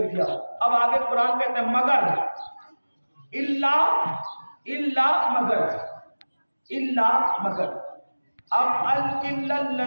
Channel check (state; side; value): inverted; both; correlation -1.00